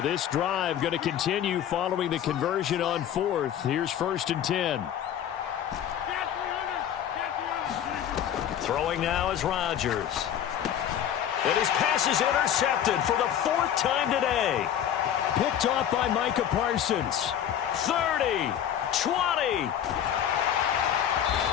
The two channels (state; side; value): quieter; right; 10.0 dB